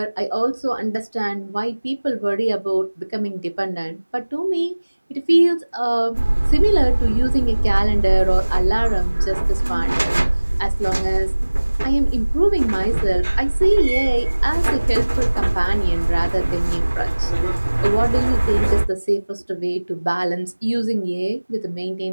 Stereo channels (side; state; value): both; inverted; correlation -1.00